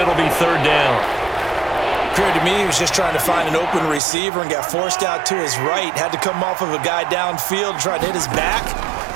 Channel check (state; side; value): drops out; left; at 4.0 s